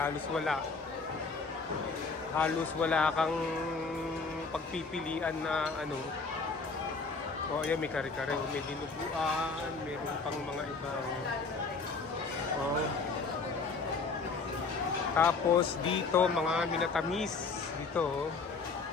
wala kang pagpipilian na ano. O ayan, may kare-kare, may dinuguan, meron pang mga ibang tapos dito mga minatamis dito,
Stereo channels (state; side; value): quieter; right; 4.4 dB